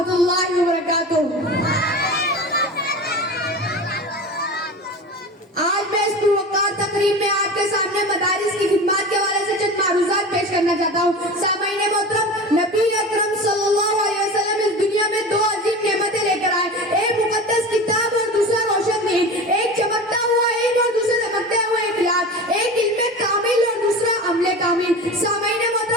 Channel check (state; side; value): normal; both; correlation 0.31